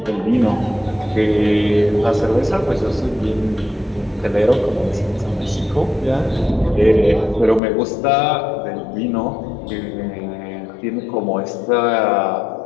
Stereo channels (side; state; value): right; drops out; at 7.6 s